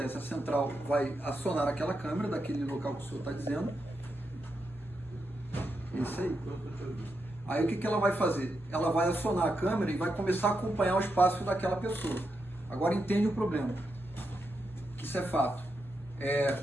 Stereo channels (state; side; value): normal; both; correlation 0.85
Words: A central vai acionar aquela câmera daquele local que o senhor está dizendo. Isso aí. Aí o que ela vai fazer? Ela vai acionar a câmera e vai começar a acompanhar os passos daquela pessoa. Agora entende o problema, que isso é fato.